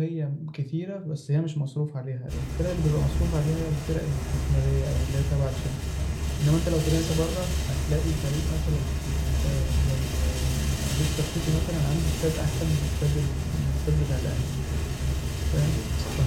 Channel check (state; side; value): identical; both; correlation 1.00